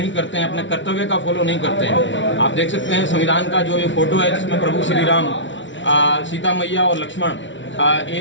करते हैं, अपने कर्तव्य का फॉलो नहीं करते हैं। आप देख सकते हैं संविधान का जो ये फोटो है, जिसमें प्रभु श्री राम, सीता मैया और लक्ष्मण,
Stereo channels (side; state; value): right; late; 0.55 ms